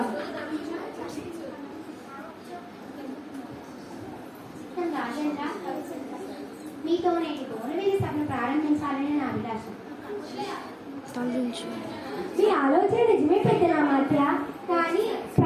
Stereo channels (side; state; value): both; identical; correlation 1.00